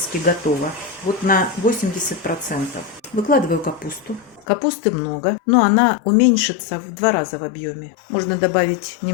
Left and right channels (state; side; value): drops out; right; at 4.5 s